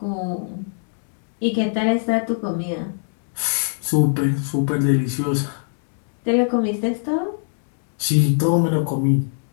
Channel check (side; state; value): right; silent; digital silence